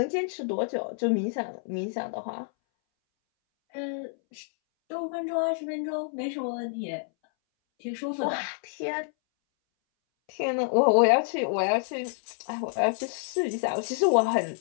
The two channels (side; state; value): right; silent; 59 dB below the other